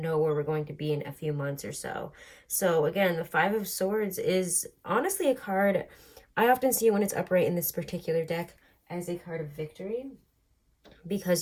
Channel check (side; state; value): both; identical; correlation 1.00